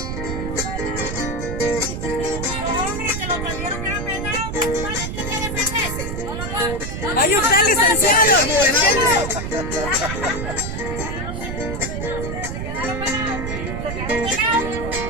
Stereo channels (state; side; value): noise; right; rumble, 4 dB below the sound